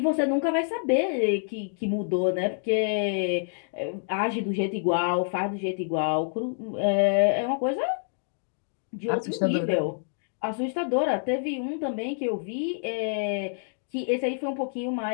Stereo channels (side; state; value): right; silent; digital silence